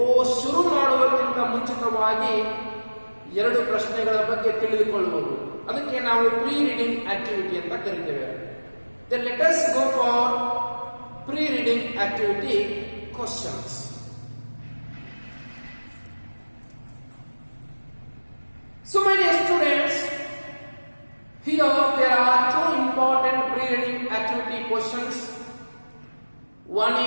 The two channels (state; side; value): inverted; both; correlation -1.00